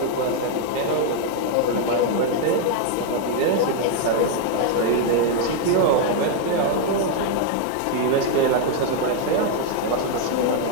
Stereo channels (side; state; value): both; different; correlation 0.00